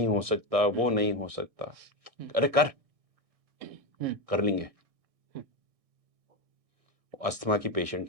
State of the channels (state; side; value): late; left; 1.6 ms